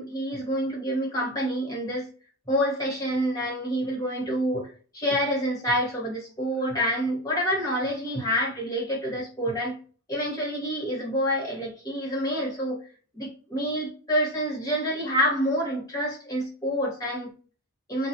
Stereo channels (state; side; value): normal; both; correlation 0.18